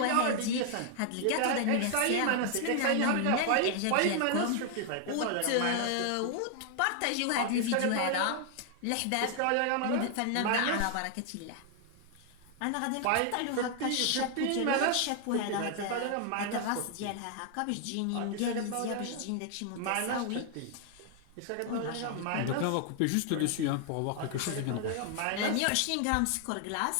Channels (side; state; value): both; different; correlation 0.00